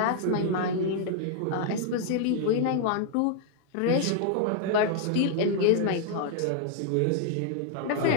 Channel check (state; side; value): different; both; correlation 0.00